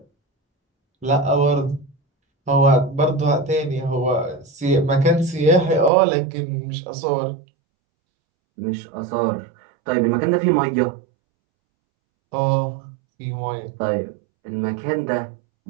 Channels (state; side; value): drops out; left; at 5.9 s